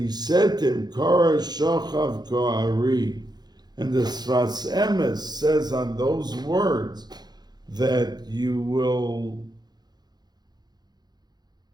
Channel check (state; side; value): late; left; 0.20 ms